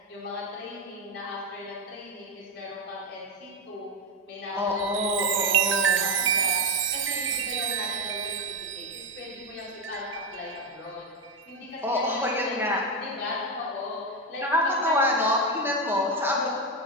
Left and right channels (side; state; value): both; normal; correlation 0.12